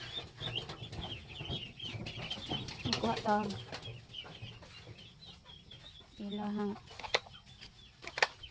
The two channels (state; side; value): identical; both; correlation 1.00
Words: Magkuha tawag. Ilahang.